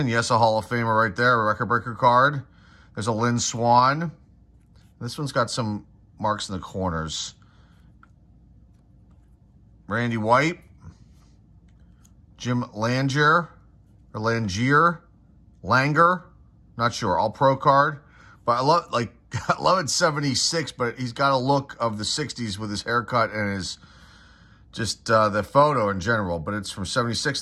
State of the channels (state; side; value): identical; both; correlation 1.00